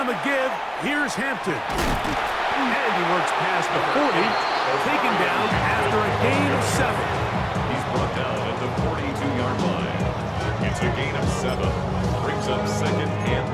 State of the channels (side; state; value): both; identical; correlation 1.00